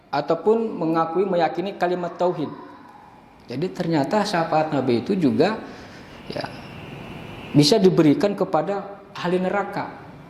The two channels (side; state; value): both; identical; correlation 1.00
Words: ataupun meyakini kalimat tauhid. Jadi ternyata syafaat Nabi itu juga, ya, bisa diberikan kepada ahli neraka,